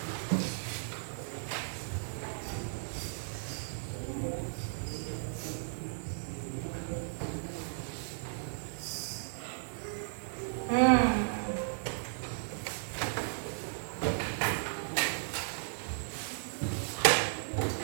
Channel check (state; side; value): silent; left; digital silence